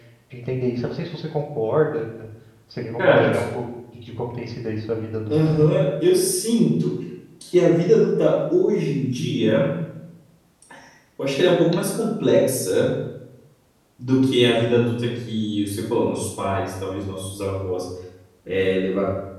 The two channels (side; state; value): both; identical; correlation 1.00